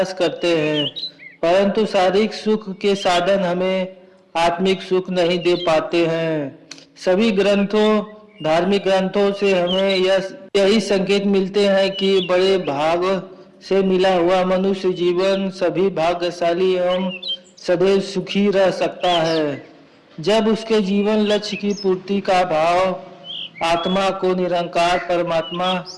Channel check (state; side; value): identical; both; correlation 1.00